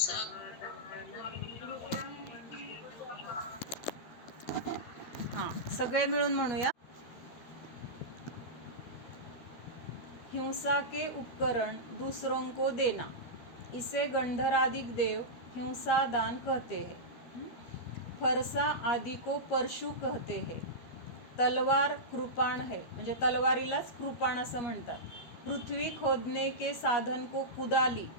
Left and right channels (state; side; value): late; right; 13 ms